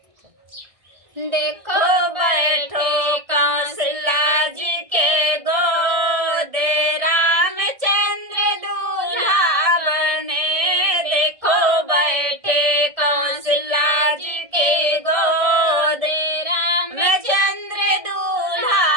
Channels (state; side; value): late; left; 1.6 ms